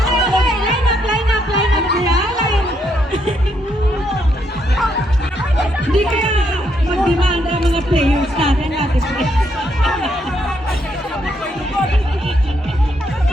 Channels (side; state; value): both; normal; correlation 0.75